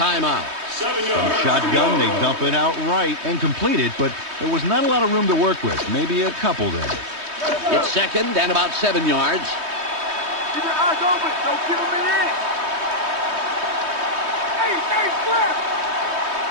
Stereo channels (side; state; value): left; late; 3.2 ms